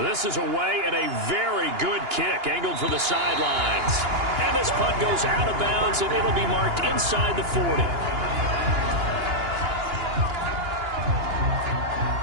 is away and a very good kick angled for the sidelines. And this punt goes out of bounds, and it'll be marked inside the 40.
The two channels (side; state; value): left; late; 2.9 ms